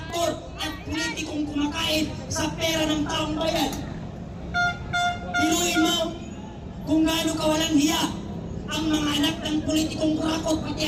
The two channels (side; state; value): both; identical; correlation 1.00